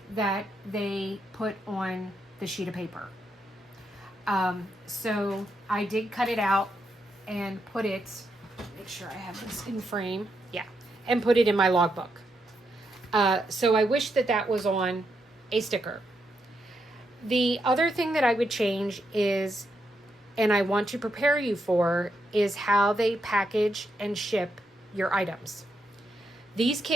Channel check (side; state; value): both; normal; correlation 0.81